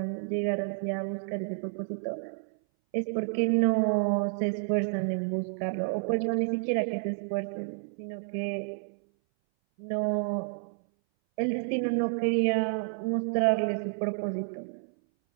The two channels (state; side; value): silent; left; 58 dB below the other